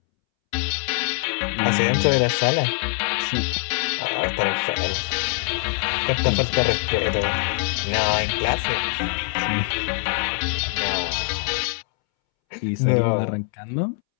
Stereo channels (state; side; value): silent; right; 63 dB below the other